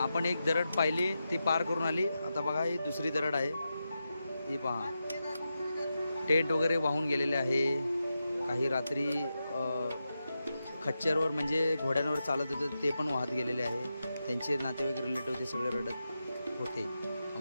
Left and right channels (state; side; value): inverted; both; correlation -0.89